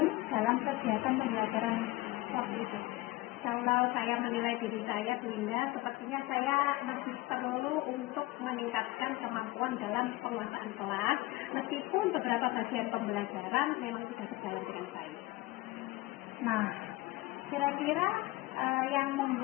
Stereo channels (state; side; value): quieter; right; 19.6 dB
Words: dalam kegiatan pembelajaran waktu itu? Kalau saya menilai diri saya Bunda, sepertinya saya masih perlu untuk meningkatkan kemampuan dalam penguasaan kelas, meskipun beberapa bagian pembelajaran memang sudah berjalan dengan baik. Nah, kira-kira yang